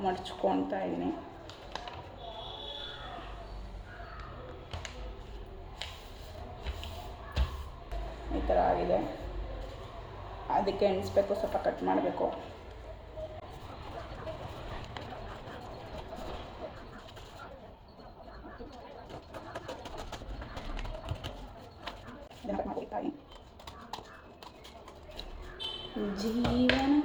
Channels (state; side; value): identical; both; correlation 1.00